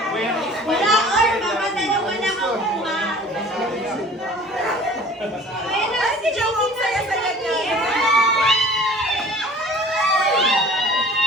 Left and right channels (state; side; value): normal; both; correlation 0.47